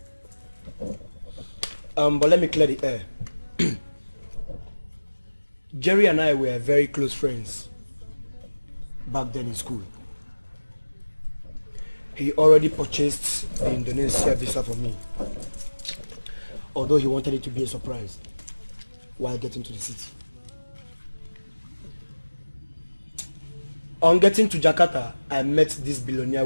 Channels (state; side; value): inverted; both; correlation -1.00